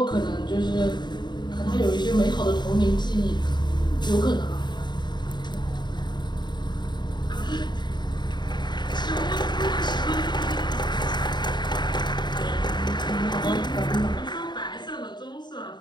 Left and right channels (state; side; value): late; right; 0.21 ms